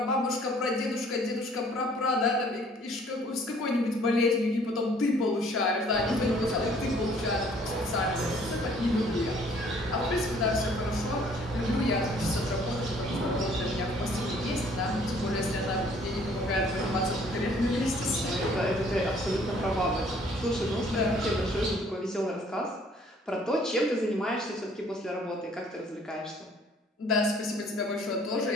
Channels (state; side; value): normal; both; correlation 0.58